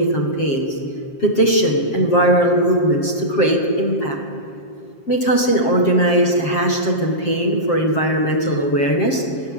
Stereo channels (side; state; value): right; late; 7.5 ms